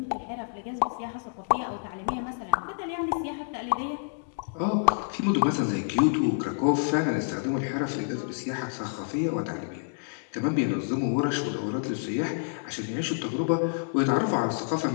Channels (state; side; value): silent; right; 59 dB below the other